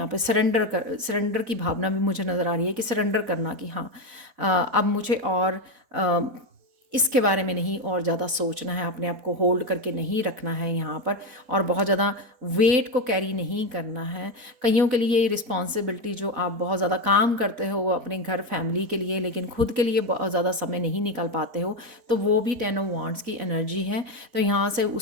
पे सरेंडर की भावना भी मुझे नज़र आ रही है, कि सरेंडर करना, कि हाँ अब मुझे और इसके बारे में नहीं और ज़्यादा सोचना है, अपने आप को होल्ड करके नहीं रखना है यहाँ पर, और बहुत ज़्यादा वेट को कैरी नहीं करना है। कईयों के लिए रिस्पॉन्सिबिलिटी, जो आप बहुत ज़्यादा काम करते हो अपने घर फैमिली के लिए, लेकिन खुद के लिए बहुत ज़्यादा समय नहीं निकाल पाते हो, तो वो भी 10 ऑफ वांड्स की एनर्जी है। तो यहाँ से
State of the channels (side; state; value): left; late; 4.1 ms